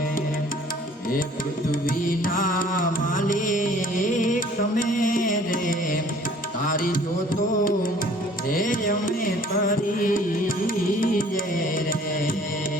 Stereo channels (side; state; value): both; normal; correlation 0.54